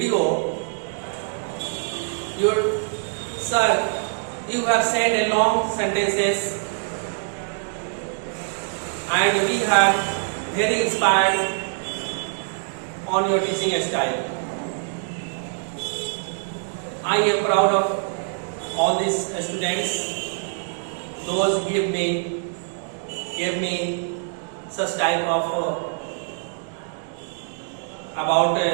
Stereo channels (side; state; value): left; silent; digital silence